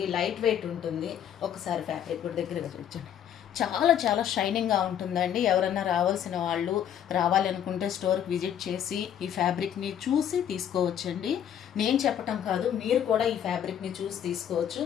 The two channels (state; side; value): quieter; right; 9.7 dB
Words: లైట్ వెయిట్ ఉంటుంది. ఒకసారి ఫ్యాబ్రిక్ కూడా దగ్గరగా చూడండి. చాలా చాలా షైనింగ్గా ఉంటుందండి. ఎవరన్నా రావాల్సిన వాళ్ళు రావాలనుకుంటే స్టోర్కి విజిట్ చేసి ఈ ఫ్యాబ్రిక్ని చూసి తీసుకోవచ్చండి. నేను చెప్పటం కాదు, మీరు కూడా ఈ ఫ్యాబ్రిక్ని చూసి తీసుకోవచ్చు.